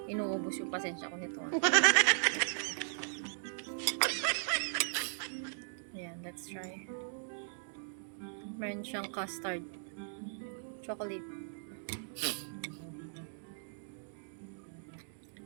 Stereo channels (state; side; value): silent; left; digital silence